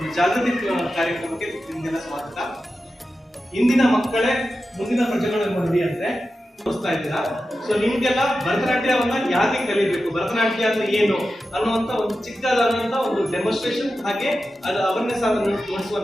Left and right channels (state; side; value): normal; both; correlation 0.92